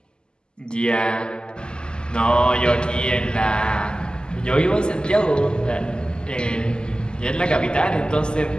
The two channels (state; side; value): late; right; 0.046 ms